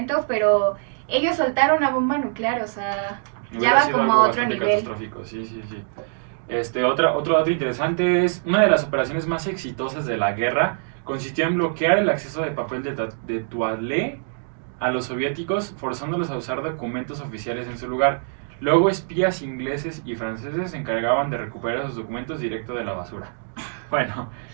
pero ellos soltaron una bomba nuclear, o sea, ya va como a otro nivel. Catastrófico, sí. Otro dato interesante es, una de las operaciones más exitosas de la guerra consistió en bloquear el acceso de papel de toilette a los soviéticos, forzándolos a usar documentos oficiales en su lugar. Luego espías ingleses y franceses se encargaban de recuperar esos documentos directo de la basura. Bueno,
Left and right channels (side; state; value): left; silent; digital silence